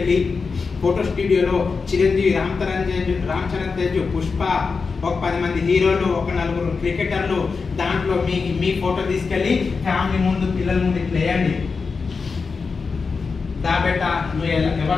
ఫోటో స్టూడియోలో చిరంజీవి, రామ్ చరణ్ తేజ్, పుష్ప, ఒక 10 మంది హీరోలు, ఒక 4 క్రికెటర్లు, దాంట్లో మీ ఫోటో తీసుకెళ్ళి ఫ్యామిలీ ముందు పిల్లల ముందు ఇట్లా వేయండి. దాబెట్ట నువ్వు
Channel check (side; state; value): right; quieter; 4.8 dB